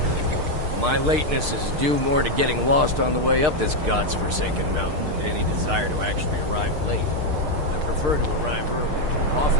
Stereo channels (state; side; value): late; left; 6.6 ms